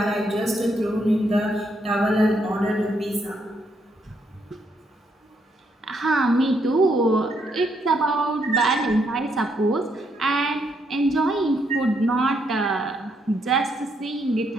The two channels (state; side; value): normal; both; correlation 0.75